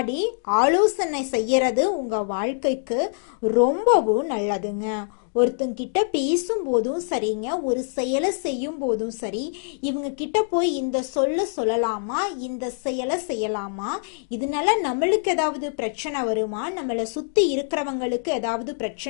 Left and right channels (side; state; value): right; silent; digital silence